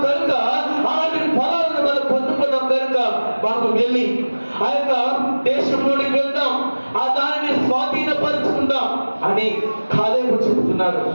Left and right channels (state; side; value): inverted; both; correlation -1.00